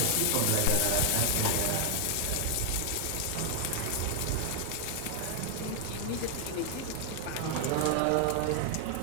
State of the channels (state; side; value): different; both; correlation 0.00